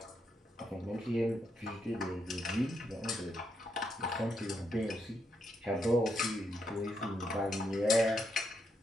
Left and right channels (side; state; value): both; normal; correlation 0.80